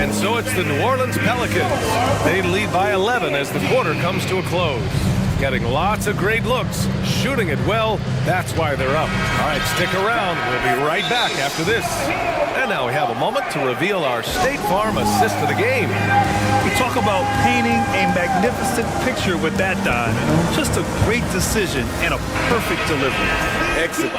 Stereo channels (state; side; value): identical; both; correlation 1.00